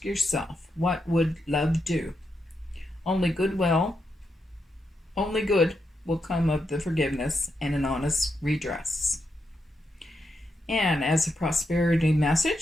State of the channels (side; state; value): both; normal; correlation 0.83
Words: yourself, what would love do? Only good will come of the forgiveness and an honest redress. And as a prosperity